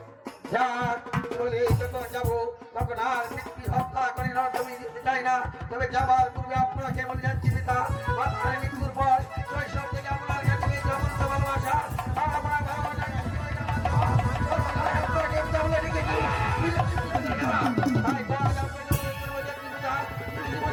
যাক চলে যখন যাবো তখন আর ব্যক্তি হত্যা করে জমি দিতে চাই না, তবে যাবার পূর্বে আপনাকে বলে যাচ্ছি পিতা, আপনার মৃত্যুর পর শৈশব থেকে আপনার কাছে সমস্ত ভালোবাসা আমার ভালোবাসাকে আপনাকে পিতা বলে রেখেছি। তাই তো আজ আপনাকে বলে যাচ্ছি পিতা, তুমি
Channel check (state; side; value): identical; both; correlation 1.00